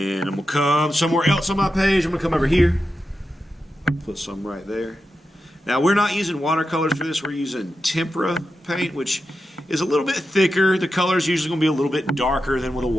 I'm going to come somewhere else on my page. I'm going to come over here. Put some right there. Now, we're not using watercolors for this. We're using tempera paint, which is a little bit thicker. The color is usually going to be a little bit darker than with a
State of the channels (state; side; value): normal; both; correlation 0.89